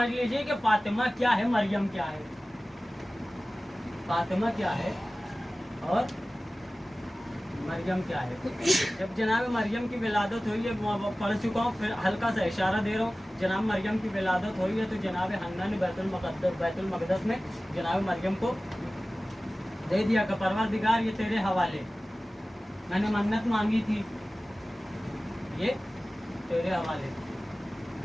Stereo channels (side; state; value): both; normal; correlation 0.97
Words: लीजिए कि फातिमा क्या है, मरियम क्या है। फातिमा क्या है और मरियम क्या है। जब जनाब मरियम की विलादत हुई है, वो पढ़ चुका हूँ, फिर हल्का सा इशारा दे रहा हूँ। जनाब मरियम की विलादत हुई है तो जनाब हन्ना ने बैतुल मक़दस में जनाब मरियम को दे दिया कि परवरदिगार ये तेरे हवाले, मैंने मन्नत मांगी थी, ये तेरे हवाले।